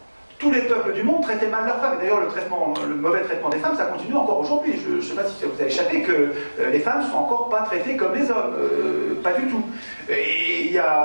Tous les peuples du monde traitaient mal leurs femmes. Et d'ailleurs, le mauvais traitement des femmes, ça continue encore aujourd'hui. Je ne sais pas si ça vous a échappé que les femmes ne sont encore pas traitées comme les hommes. Pas du tout. Et il y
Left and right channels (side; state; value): both; inverted; correlation -1.00